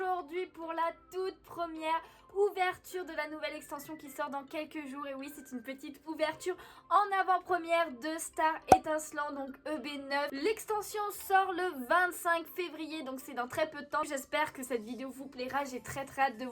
pour la toute première ouverture de la nouvelle extension qui sort dans quelques jours. Et oui, c'est une petite ouverture en avant-première de Star Étincelant, donc EB9. L'extension sort le 25 février, donc c'est dans très peu de temps. J'espère que cette vidéo vous plaira. J'ai très hâte de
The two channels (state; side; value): identical; both; correlation 1.00